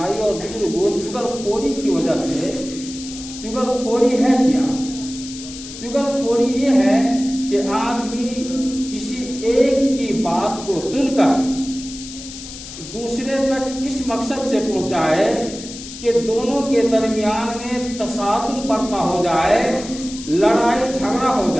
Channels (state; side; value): noise; left; hiss, 12 dB below the sound